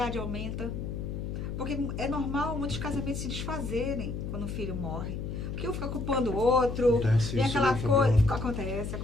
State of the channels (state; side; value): noise; left; hum, 5 dB below the sound